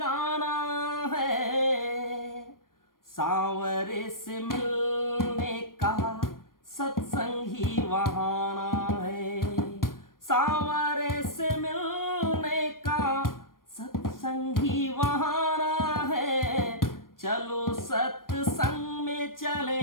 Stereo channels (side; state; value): right; late; 0.91 ms